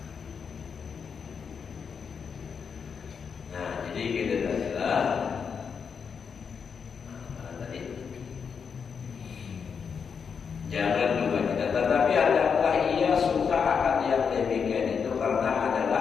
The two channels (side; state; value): right; quieter; 6.4 dB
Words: Nah jadi kita adalah jangan juga tidak, tetapi adakah ia suka akan yang demikian itu karena